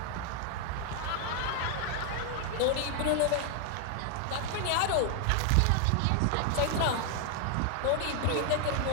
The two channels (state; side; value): different; both; correlation 0.00